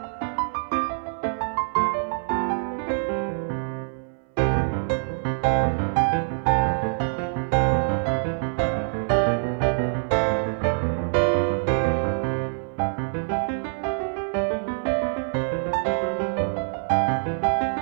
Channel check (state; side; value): silent; left; 59 dB below the other